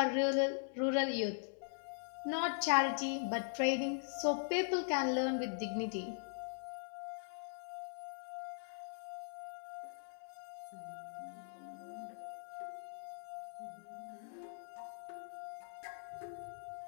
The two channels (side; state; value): right; silent; 50 dB below the other